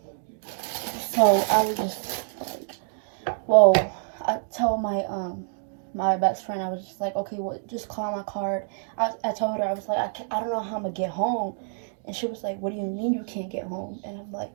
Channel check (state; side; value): silent; left; digital silence